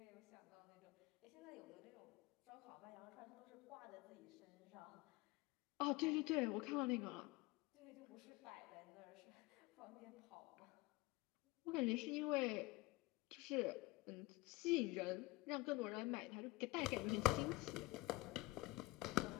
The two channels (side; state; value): right; quieter; 20.9 dB